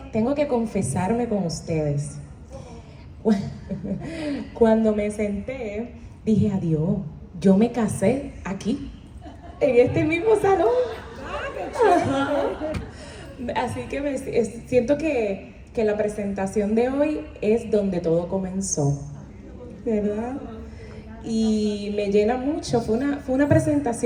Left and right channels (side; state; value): both; identical; correlation 1.00